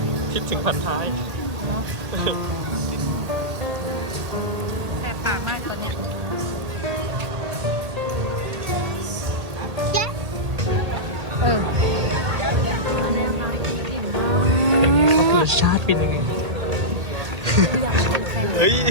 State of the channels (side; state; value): left; late; 1.8 ms